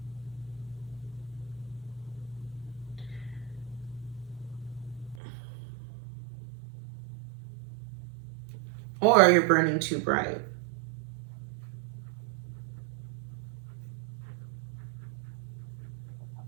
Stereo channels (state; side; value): drops out; left; at 5.2 s